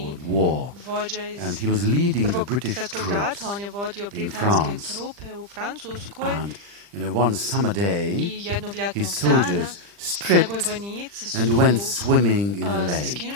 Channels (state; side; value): late; left; 40 ms